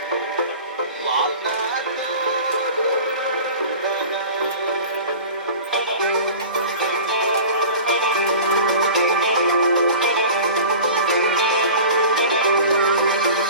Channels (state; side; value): inverted; both; correlation -0.39